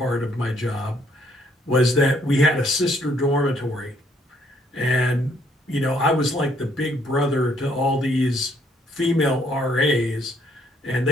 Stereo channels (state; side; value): normal; both; correlation 0.68